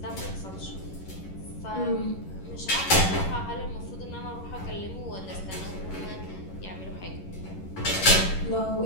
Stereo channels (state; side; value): late; right; 11 ms